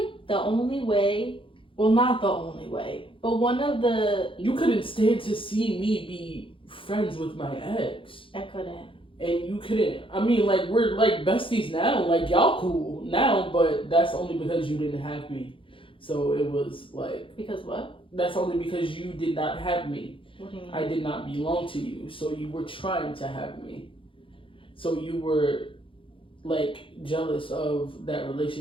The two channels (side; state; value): right; late; 0.25 ms